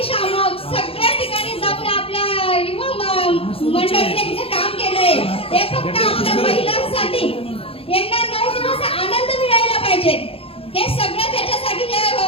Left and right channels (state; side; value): late; right; 0.27 ms